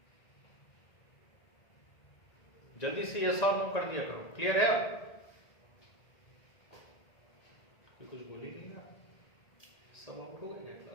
जल्दी से यस और नो कर दिया करो। क्लियर है? अब कुछ बोल ही नहीं ना, सब आउट हो गए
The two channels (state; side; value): late; right; 1.9 ms